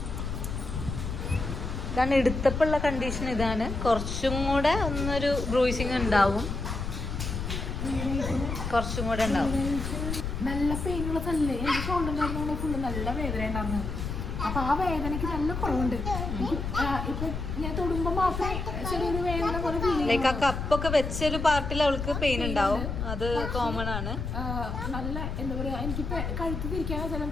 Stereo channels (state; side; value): noise; left; rumble, 4 dB below the sound